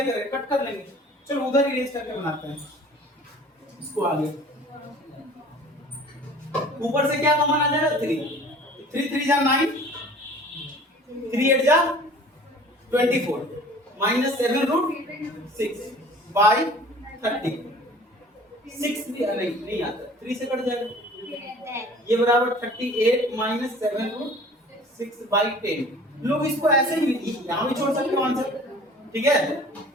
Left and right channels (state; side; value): normal; both; correlation 0.47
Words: कट कर लेंगे। चलो उधर इरेज करके बनाते हैं इसको आगे, ऊपर से क्या कॉमन आ जाएगा? 3 3 3 जा 9 3 8 जा 24 माइनस 7 रूट 6 बाई 30, 6 नहीं आता, 3 से कट जाएगा, ये बराबर 38 माइनस 7 रूट 6 बाई 10। लोग इसको ऐसे ही यहाँ भी छोड़ सकते हो आंसर, ठीक है,